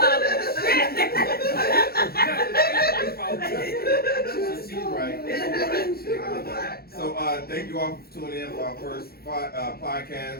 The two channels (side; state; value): right; late; 0.45 ms